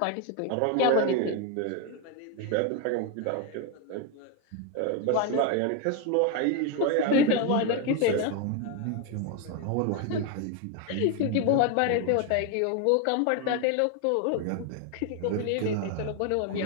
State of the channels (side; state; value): both; different; correlation 0.01